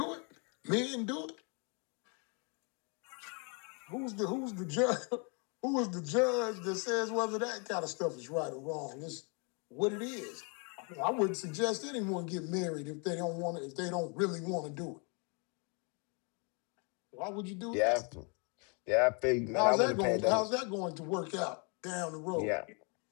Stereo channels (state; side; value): quieter; right; 35.6 dB